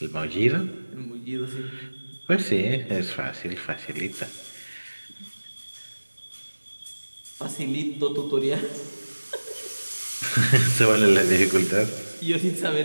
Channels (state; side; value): inverted; both; correlation -1.00